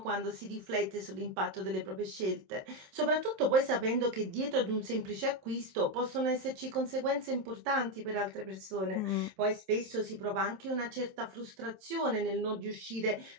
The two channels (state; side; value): late; left; 27 ms